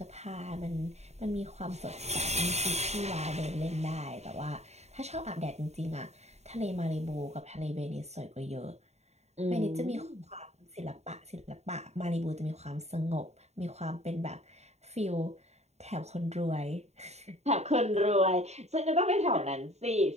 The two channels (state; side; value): late; left; 0.32 ms